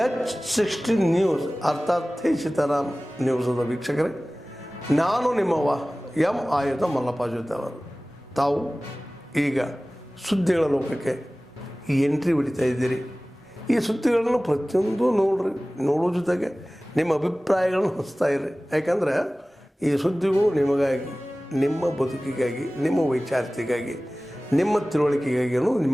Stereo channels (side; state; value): both; normal; correlation 0.98